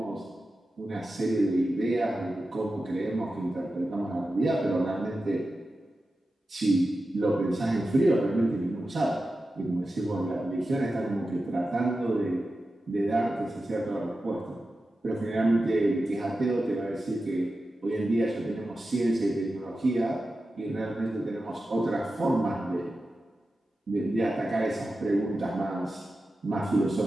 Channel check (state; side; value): normal; both; correlation 0.92